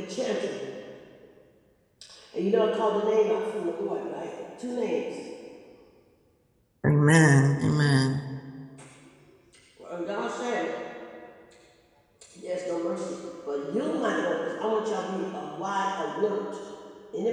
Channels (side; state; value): both; identical; correlation 1.00